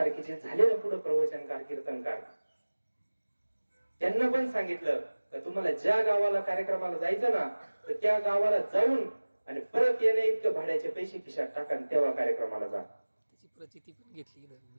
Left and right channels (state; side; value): inverted; both; correlation -1.00